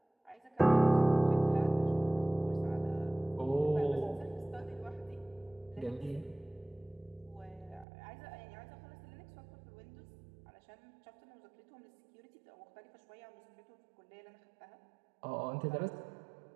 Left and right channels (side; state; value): left; drops out; at 7.9 s